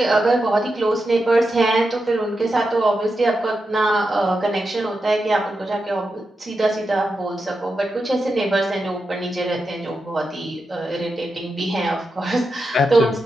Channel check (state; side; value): normal; both; correlation 0.88